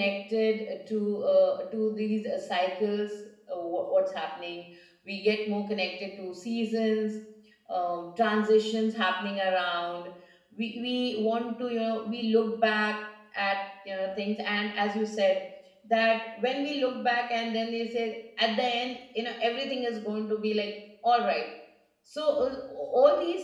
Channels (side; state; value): both; identical; correlation 1.00